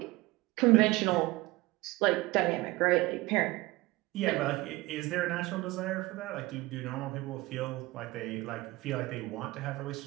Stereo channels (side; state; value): left; quieter; 20.6 dB